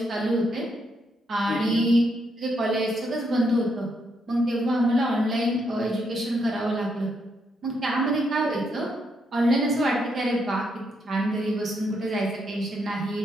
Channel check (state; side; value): normal; both; correlation 0.77